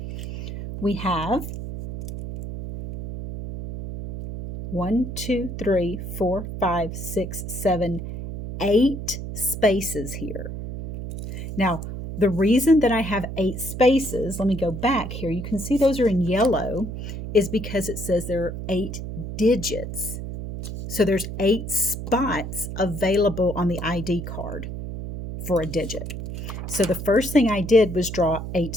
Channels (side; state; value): right; noise; hum, 7 dB below the sound